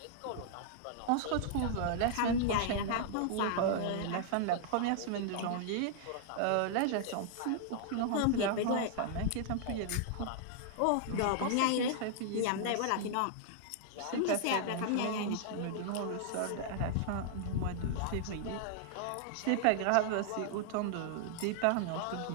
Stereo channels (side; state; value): both; different; correlation -0.01